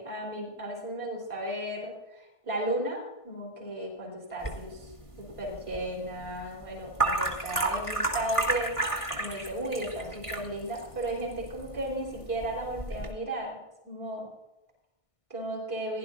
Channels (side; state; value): right; late; 1.5 ms